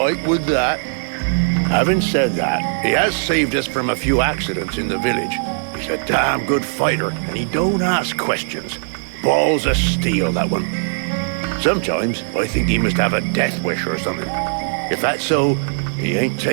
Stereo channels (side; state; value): left; silent; 66 dB below the other